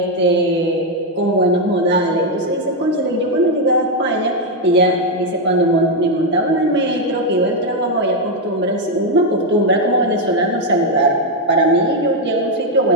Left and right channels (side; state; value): both; normal; correlation 0.02